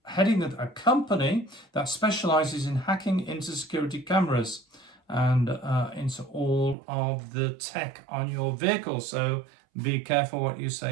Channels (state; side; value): drops out; left; at 6.8 s